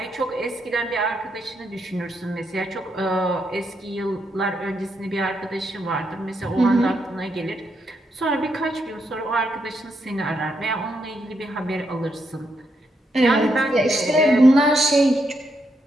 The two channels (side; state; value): both; normal; correlation 0.80